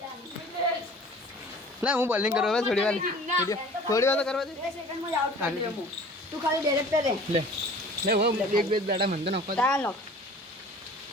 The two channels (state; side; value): normal; both; correlation 0.46